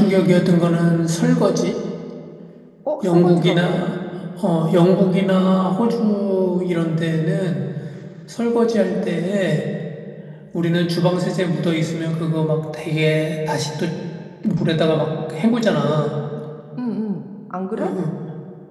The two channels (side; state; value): both; identical; correlation 1.00